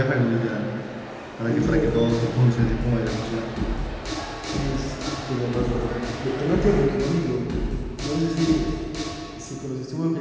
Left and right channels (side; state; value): both; identical; correlation 1.00